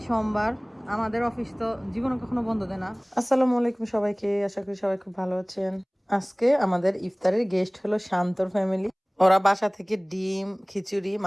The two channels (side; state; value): both; identical; correlation 1.00